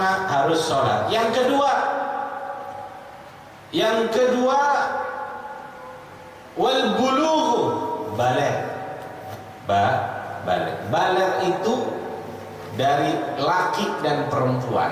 harus sholat. Yang kedua wal bulugh, baligh. Baligh itu dari laki dan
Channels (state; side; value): identical; both; correlation 1.00